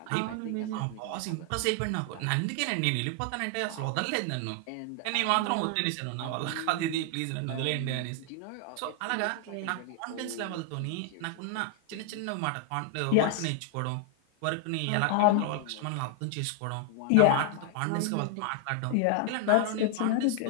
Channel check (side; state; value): both; different; correlation 0.00